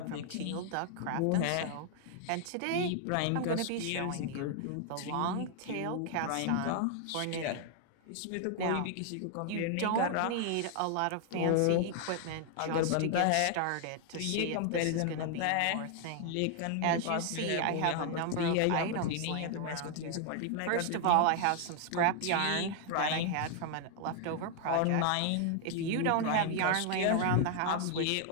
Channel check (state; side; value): different; both; correlation 0.00